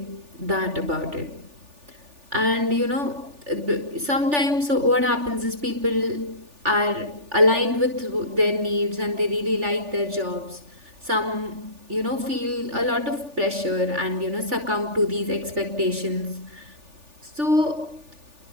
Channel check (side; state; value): left; late; 3.4 ms